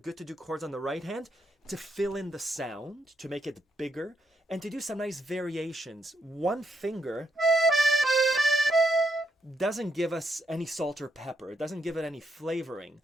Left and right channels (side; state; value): both; normal; correlation 0.78